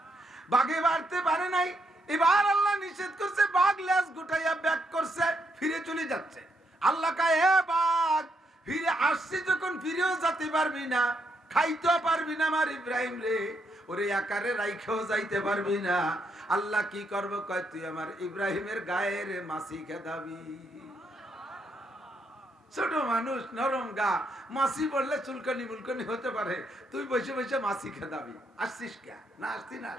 বাঘে বাড়তে পারে নাই। এবার আল্লাহ নিষেধ করছে, বাঘ লেজ গুটাইয়া ব্যাক করছে, ফিরে চলে যাচ্ছে। আল্লাহ কয়, হে বাঘ, ফিরে আসছি যখন ফিরেও যেতে পারবি না, খাইতেও পারবি না আমার ইব্রাহিম রে, ওরে আকারে রাইখেও যাইতে পারবি না। আল্লাহ কি করবো? কয়, তুই আমার ইব্রাহিমের গায়ের মাছি খেদাবি। ছোট মানুষ, নরম গা, মাছি পড়লে চুলকানি মুলকানি হতে পারে, তুই বসে বসে মাছি খেদাবি। আসছিস কে? না আসতি না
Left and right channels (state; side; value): normal; both; correlation 0.78